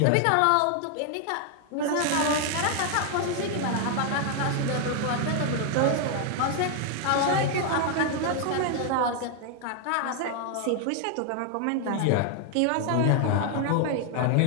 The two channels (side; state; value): both; different; correlation 0.00